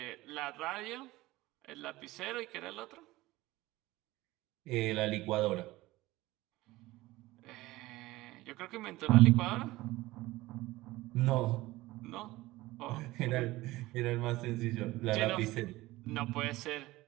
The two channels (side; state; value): left; quieter; 18.7 dB